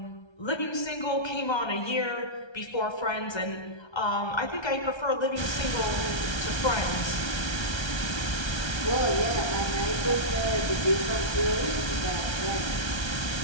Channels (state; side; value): late; right; 1.3 ms